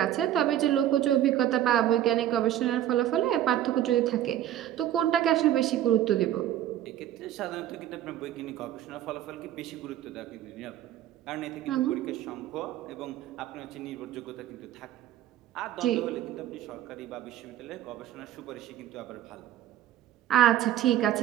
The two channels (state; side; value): quieter; left; 12.2 dB